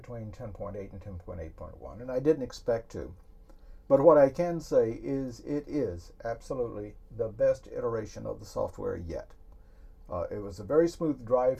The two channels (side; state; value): both; identical; correlation 1.00